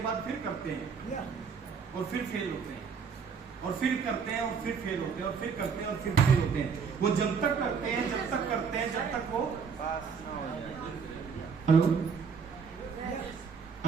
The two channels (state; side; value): quieter; left; 6.0 dB